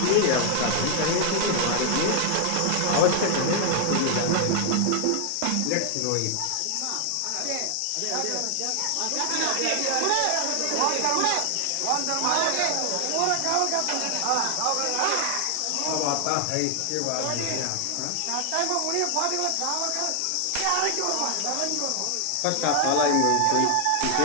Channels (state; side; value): different; both; correlation 0.00